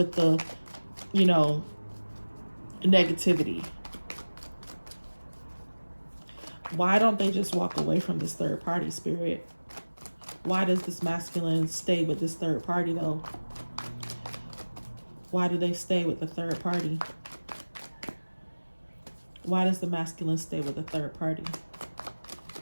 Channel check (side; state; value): both; inverted; correlation -1.00